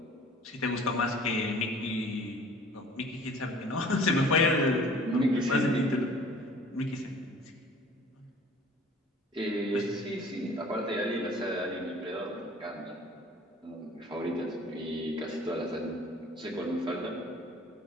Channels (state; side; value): normal; both; correlation 0.50